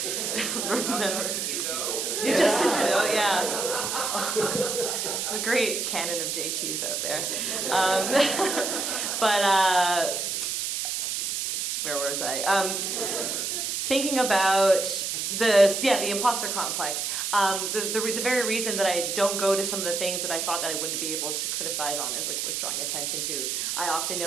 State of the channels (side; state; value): right; noise; hiss, 1 dB below the sound